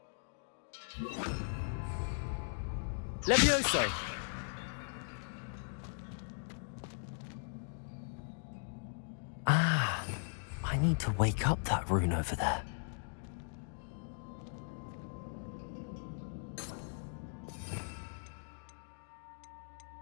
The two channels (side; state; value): right; silent; digital silence